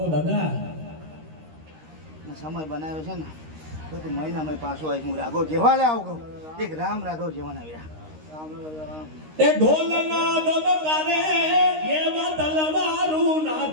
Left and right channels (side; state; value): left; late; 13 ms